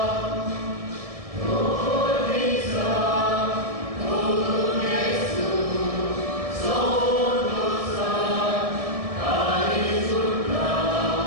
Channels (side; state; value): left; late; 1.7 ms